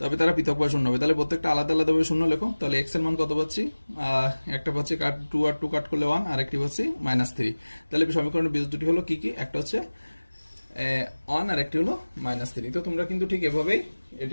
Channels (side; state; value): both; inverted; correlation -1.00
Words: তবে তারা পৃথকভাবে শূন্য হবে। তাহলে প্রত্যেকটা আলাদা আলাদাভাবে শূন্য লেখো। তাহলে x এর মান কত পাচ্ছি, একটা পাচ্ছি 2 আর 2 কাট করলে 1, আর একটি পাচ্ছি -3। তাহলে সমীকরণের বীজ দুটি হলো কি কি, একটা হচ্ছে 1 আর একটি হলো -3। তো তোমরা কিন্তু ঠিক এভাবেই